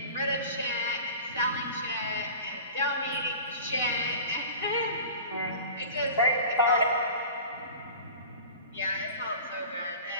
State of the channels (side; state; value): both; inverted; correlation -0.38